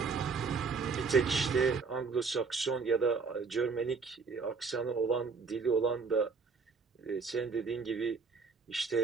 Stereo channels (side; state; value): left; quieter; 4.9 dB